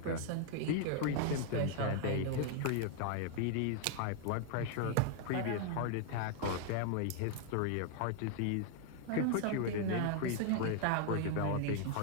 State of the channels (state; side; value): different; both; correlation 0.00